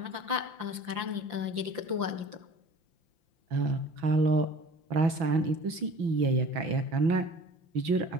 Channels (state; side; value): late; left; 5.8 ms